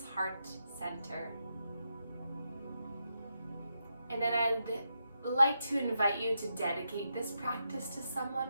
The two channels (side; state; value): both; inverted; correlation -0.84